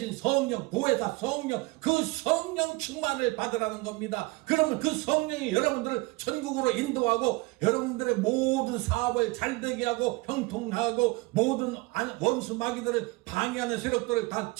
성령, 보혜사 성령, 그 성령 충만을 받으라는 겁니다. 그러면 그 성령이 여러분들을 천국으로 인도하고 여러분들의 모든 사업을 잘되게 하고 형통하고 모든 원수 마귀들을 방해하는 세력들을 다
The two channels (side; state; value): left; quieter; 23.0 dB